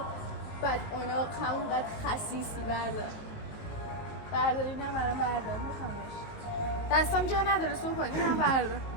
بدعناق، همونقدر خسیسی. بردار اینم برام بردار، میخوامش. دستم جا نداره صبح کن، اینم بردار.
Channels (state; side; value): late; right; 19 ms